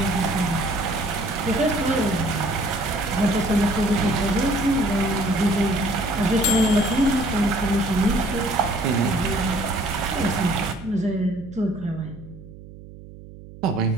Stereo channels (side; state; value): right; noise; hum, 17 dB below the sound